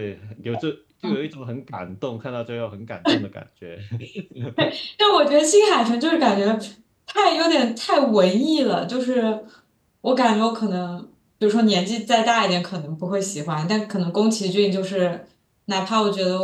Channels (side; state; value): both; identical; correlation 1.00